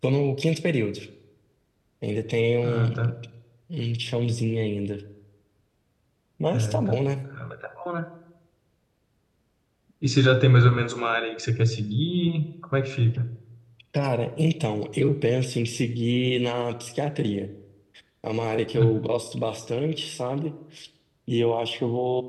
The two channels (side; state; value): both; identical; correlation 1.00